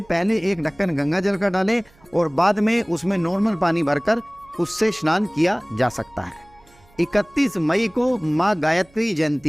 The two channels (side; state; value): right; noise; hum, 30 dB below the sound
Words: पहले एक ढक्कन गंगा जल का डालें और बाद में उसमें नॉर्मल पानी भरकर उससे स्नान किया जा सकता है। 31 मई को माँ गायत्री